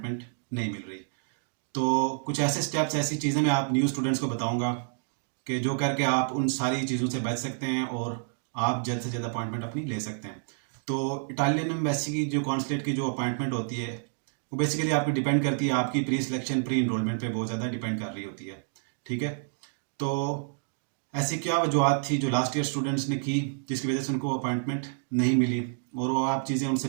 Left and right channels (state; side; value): silent; left; digital silence